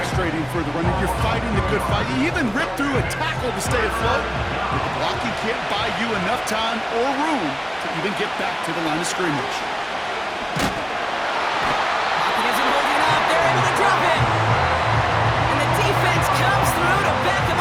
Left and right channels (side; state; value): both; identical; correlation 1.00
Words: for the runner. You're fighting the good fight. You even rip through a tackle to stay afloat. But the blocking can't buy you enough time or room to even get back to the line of scrimmage. Pocket isn't holding up. They're able to drop it. And the defense comes through to back him